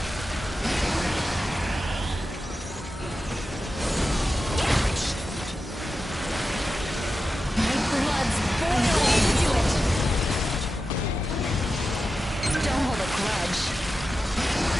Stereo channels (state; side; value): normal; both; correlation 0.91